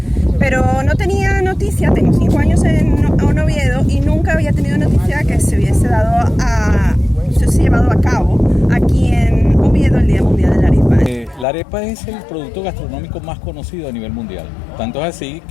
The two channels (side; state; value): right; drops out; at 11.5 s